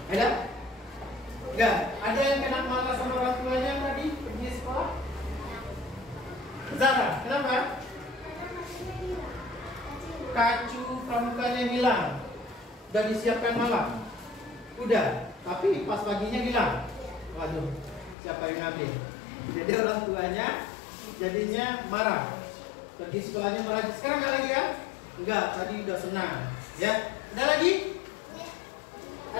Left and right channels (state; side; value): drops out; right; at 18.2 s